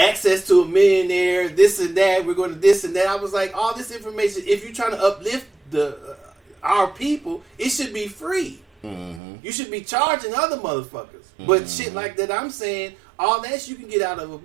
to a millionaire. This and that. We're going to this and that. I was like, all this information. If you're trying to uplift our people, it should be free. Mm-hmm. You should be charging other motherfuckers. Mm-hmm. But shit like that, I'm saying all that you can get out of a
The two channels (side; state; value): left; drops out; at 9.2 s